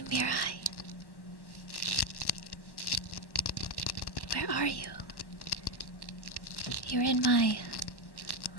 Mirai? Where are you? You're in my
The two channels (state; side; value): late; right; 1.1 ms